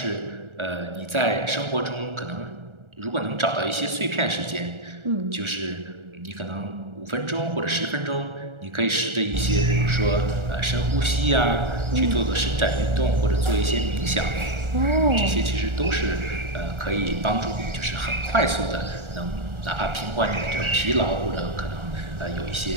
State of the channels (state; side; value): late; left; 1.4 ms